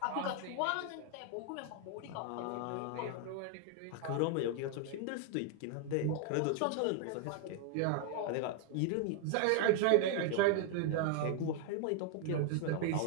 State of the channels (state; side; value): different; both; correlation 0.00